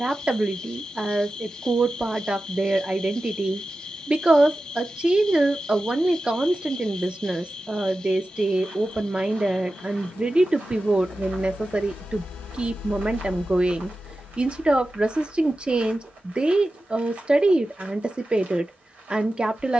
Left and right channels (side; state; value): both; normal; correlation 0.93